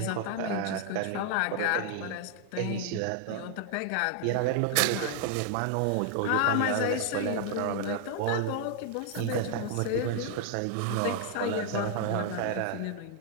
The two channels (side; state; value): both; different; correlation 0.00